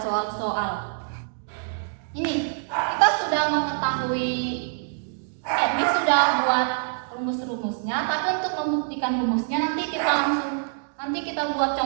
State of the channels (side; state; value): left; silent; digital silence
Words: Ini kita sudah mengetahui, ini sudah buat rumus-rumusnya, tapi untuk membuktikan rumusnya nanti kita buat